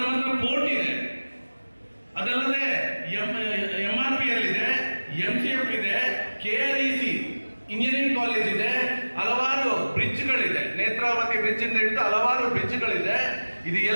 ಹತ್ರ ಪೋರ್ಟ್ ಇದೆ, ಅದಲ್ಲದೆ MRPL ಇದೆ, MCF ಇದೆ, KREC ಇಂಜಿನಿಯರಿಂಗ್ ಕಾಲೇಜ್ ಇದೆ, ಹಲವಾರು ಬ್ರಿಡ್ಜ್ಗಳಿದೆ, ನೇತ್ರಾವತಿ ಬ್ರಿಡ್ಜ್ ಇಂದ ಹಿಡಿದು ಹಲವಾರು ಬ್ರಿಡ್ಜ್ಗಳಿದೆ. ಇದು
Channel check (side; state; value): both; inverted; correlation -1.00